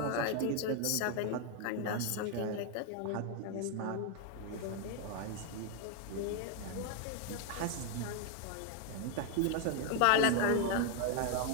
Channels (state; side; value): different; both; correlation 0.01